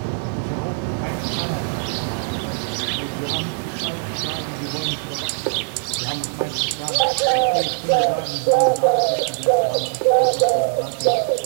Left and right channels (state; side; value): silent; left; 62 dB below the other